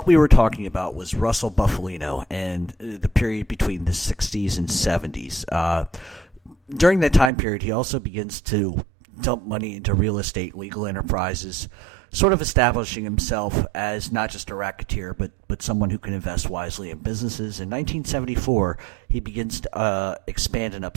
we were talking about was Russel Bufalino and the period between the 60s and 70s. During that time period, he also begins to dump money into real estate, legal enterprises, sort of establishing himself as not just a racketeer, but someone who can invest wisely in businesses. In 1974, he begins to expand in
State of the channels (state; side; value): drops out; left; at 7.3 s